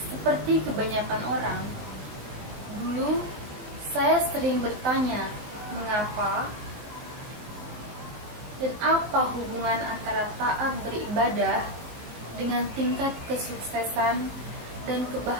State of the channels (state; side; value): late; left; 19 ms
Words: Seperti kebanyakan orang, dulu saya sering bertanya mengapa dan apa hubungan antara taat beribadah dengan tingkat kesuksesan dan